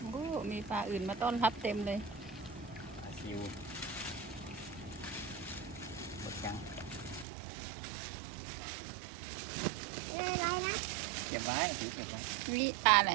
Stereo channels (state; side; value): drops out; left; at 7.2 s